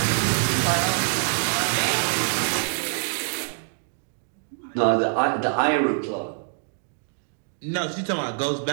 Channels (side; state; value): left; silent; digital silence